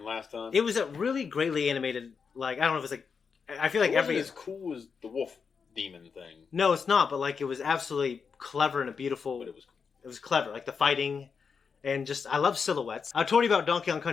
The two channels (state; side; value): quieter; right; 5.8 dB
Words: last time? It was a really greatly animated, like, I don't know if it's like, I feel like it wasn't every... as cool as the wolf demon thing. No, it's not, but like, it was absolutely clever and a beautiful... But it was cool. It was clever, like the fighting, and just, I love silhouettes. I told you about Donkey Kong